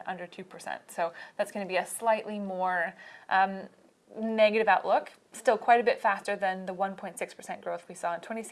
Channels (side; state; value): both; identical; correlation 1.00